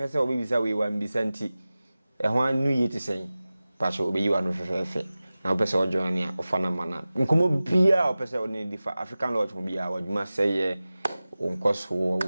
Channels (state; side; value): inverted; both; correlation -0.97